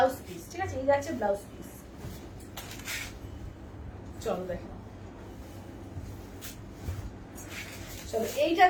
পিস, ঠিক আছে, এই যাচ্ছে ব্লাউজ পিস। চলো দেখো, চলো এইটা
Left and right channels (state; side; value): identical; both; correlation 1.00